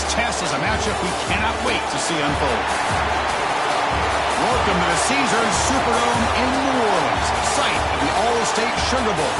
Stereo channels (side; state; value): both; identical; correlation 1.00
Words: test is a matchup we cannot wait to see unfold. Welcome to the Caesars Superdome in New Orleans, site of the All-State Sugar Bowl,